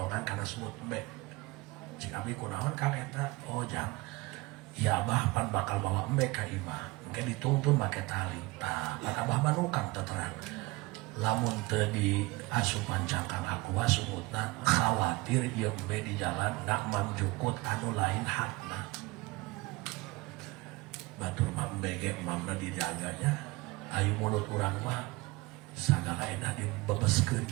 kana semut embe cik abdi kunaon kang eta, oh jang ya abah pan bakal bawa embe ka imah engke dituntun make tali tah pan abah manukang teterang lamun teu di asupan cangkang aqua sumutna khawatir ieu embe di jalan nak mamjukut anu lain hakna batur mah embe ge mamna dijaganya ayu mulut urang mah sagala enak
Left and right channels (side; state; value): left; quieter; 22.7 dB